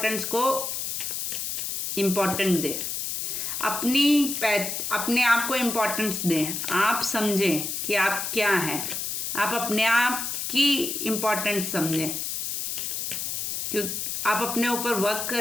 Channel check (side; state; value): left; noise; hiss, 3 dB below the sound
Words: को इम्पोर्टेंट दें, अपने आप को इम्पोर्टेंस दें। आप समझें कि आप क्या हैं, आप अपने आप की इम्पोर्टेंस समझें, क्योंकि आप अपने ऊपर वर्क